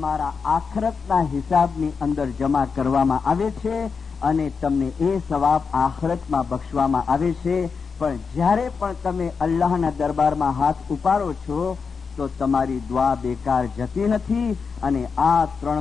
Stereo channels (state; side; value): quieter; right; 5.4 dB